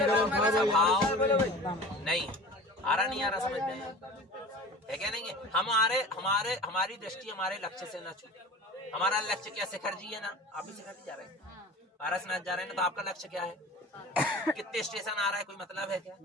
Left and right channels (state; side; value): normal; both; correlation 0.38